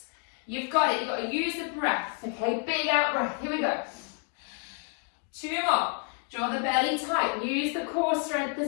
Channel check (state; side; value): quieter; right; 39.1 dB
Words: You've got it. You've got to use the breath. Okay, big out breath. Here we go. 2 more. Draw the belly tight. Use the core strength